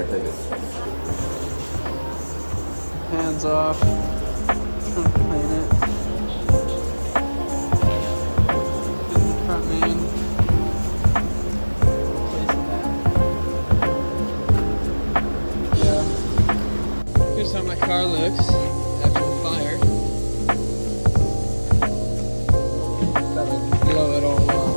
take it. Hands off. Trying to clean it. Get the front main. Here's how my car looks after the fire. That'll blow it all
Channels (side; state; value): both; inverted; correlation -1.00